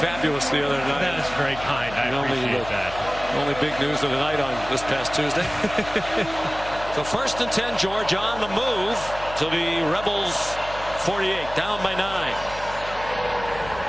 the other night. That is very kind. I appreciate that. Only big news of the night on this past Tuesday. So 1st and 10, Georgia on the move to the Rebels 48, down by 9.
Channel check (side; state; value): left; noise; hum, 14 dB below the sound